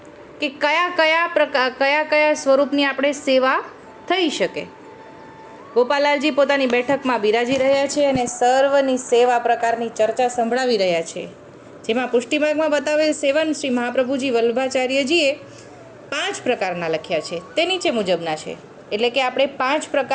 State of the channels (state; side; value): identical; both; correlation 1.00